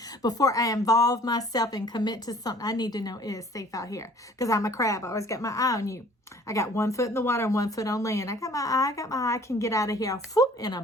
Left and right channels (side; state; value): both; normal; correlation 0.53